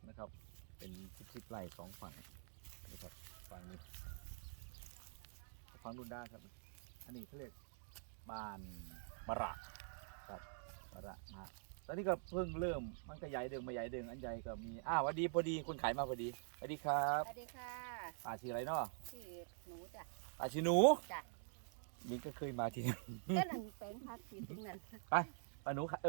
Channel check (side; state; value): left; silent; digital silence